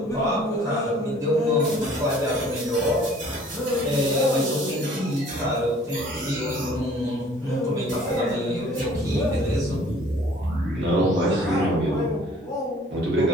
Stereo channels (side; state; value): both; normal; correlation 0.54